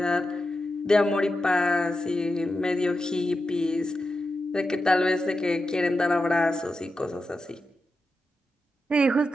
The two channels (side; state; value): both; normal; correlation 0.89